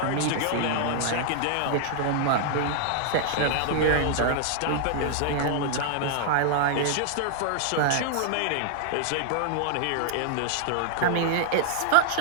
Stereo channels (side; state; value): both; different; correlation -0.01